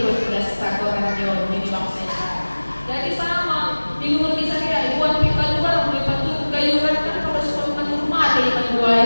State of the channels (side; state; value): both; inverted; correlation -1.00